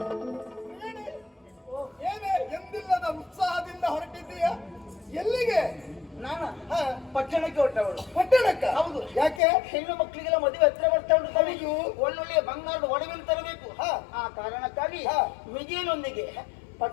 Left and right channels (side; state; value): right; drops out; at 9.4 s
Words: ಎಂದಿಲ್ಲದ ಉತ್ಸಾಹದಿಂದ ಹೊರಟಿದ್ದೀಯ. ಎಲ್ಲಿಗೆ? ನಾನ ಪಟ್ಟಣಕ್ಕೆ ಹೊರಟವಳು. ಪಟ್ಟಣಕ್ಕ? ಹೌದು. ಯಾಕೆ? ಹೆಣ್ಣು ಮಕ್ಕಳಿಗೆಲ್ಲ ಮದುವೆ ಹತ್ರ ಬರ್ತಾ ಉಂಟು. ತಮಿಳು ಒಳ್ಳೊಳ್ಳೆಯ ಬಂಗಾರದ ಒಡವೆಯನ್ನು ತರಬೇಕು. ಆ ಕಾರಣಕ್ಕಾಗಿ ವಿಜಯನೊಂದಿಗೆ